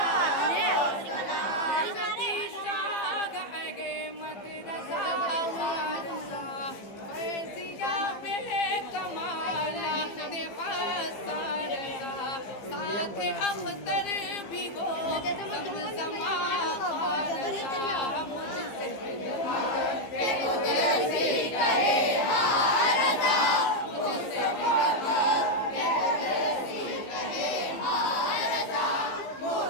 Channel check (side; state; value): right; late; 15 ms